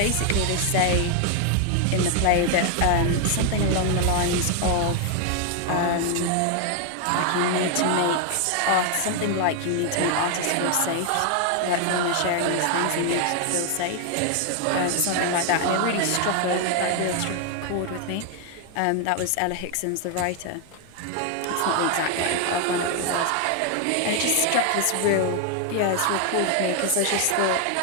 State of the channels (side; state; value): both; different; correlation 0.01